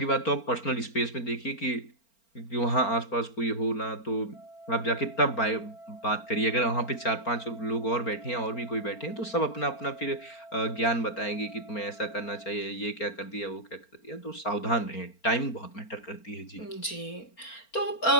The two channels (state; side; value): late; right; 4.4 ms